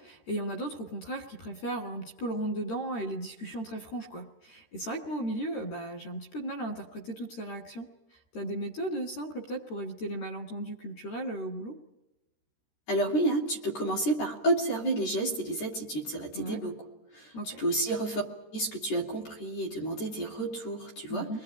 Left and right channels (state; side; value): late; right; 13 ms